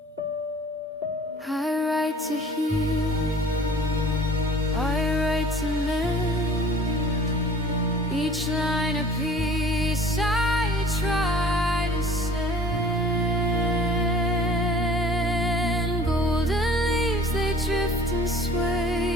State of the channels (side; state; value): both; normal; correlation 0.48